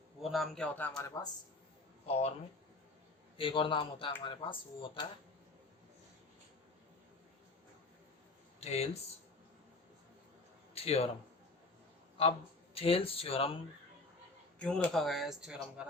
वो नाम क्या होता है हमारे पास, और में एक और नाम होता है हमारे पास, वो होता है थेल्स थ्योरम। अब थेल्स थ्योरम क्यों रखा गया है इस थ्योरम का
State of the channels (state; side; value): quieter; right; 3.2 dB